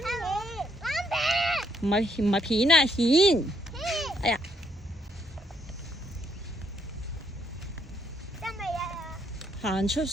搵片。唔係片啊，蜆。哎呀！得未啊？行出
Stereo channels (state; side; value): normal; both; correlation 0.72